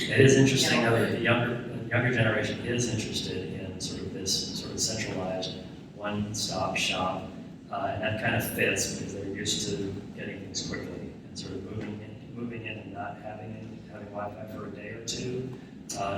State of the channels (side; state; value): both; identical; correlation 1.00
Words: is interesting though that the younger generation is interested in sort of this sort of centralized one-stop shop, and that kind of fits because they're used to getting things quickly and sort of moving in and not having Wi-Fi for a day or two